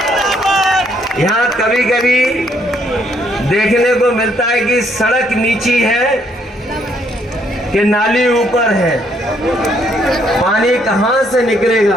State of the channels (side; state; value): both; normal; correlation 0.70